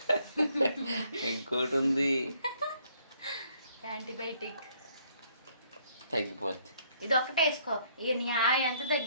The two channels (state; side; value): inverted; both; correlation -0.67